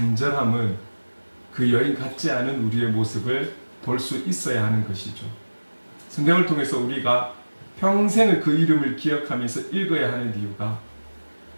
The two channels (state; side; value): inverted; both; correlation -1.00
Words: 그 여인 같지 않은 우리의 모습을 볼 수 있어야 하는 것이죠. 성경을 통해서 우리가 평생을 그 이름을 기억하면서 읽어야 하는 이유가